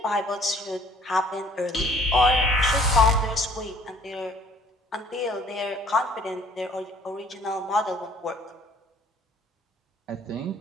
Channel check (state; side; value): normal; both; correlation 0.57